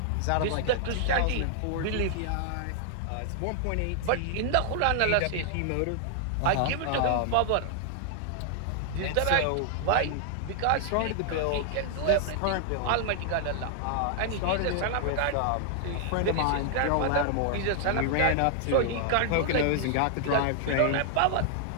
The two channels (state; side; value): different; both; correlation 0.00